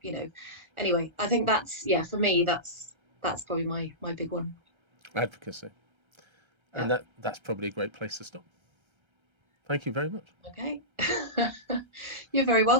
anyway, I think that's, yeah, for me, that's probably my big one. Advocacy. Yeah. And that's probably a great place to stop. Thank you very much. Okay. You're very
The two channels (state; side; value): late; left; 1.3 ms